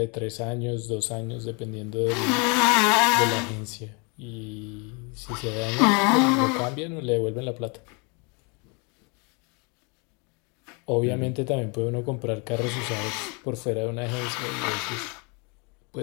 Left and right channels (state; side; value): quieter; right; 32.5 dB